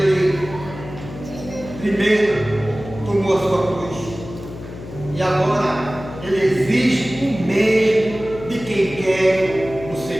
primeiro tomou a sua cruz e agora ele exige o mesmo de quem quer o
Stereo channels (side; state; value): left; noise; hum, 13 dB below the sound